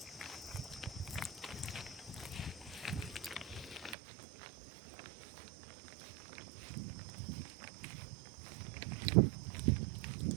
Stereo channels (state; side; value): drops out; left; at 4.0 s